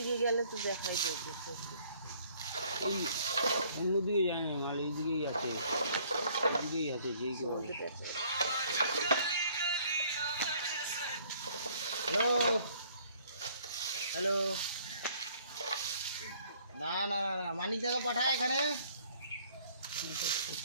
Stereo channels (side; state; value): both; inverted; correlation -0.60